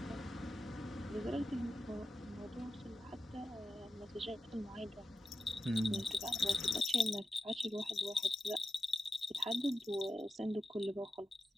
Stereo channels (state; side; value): normal; both; correlation 0.91